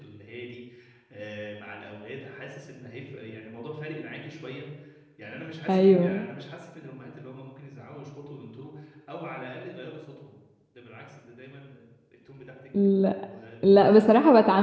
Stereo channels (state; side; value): identical; both; correlation 1.00